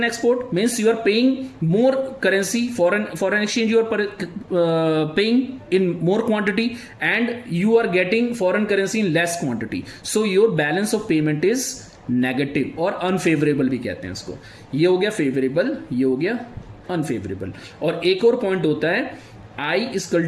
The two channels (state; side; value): identical; both; correlation 1.00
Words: export means you are paying more currency, foreign exchange you are paying in more quantity, and you are getting foreign currency in less quantity, so your balance of payment is negative और unfavorable भी कहते हैं इसको. ये हो गया favourable, ये हो गया अनफेवरेबल. और एक और पॉइंट होता है I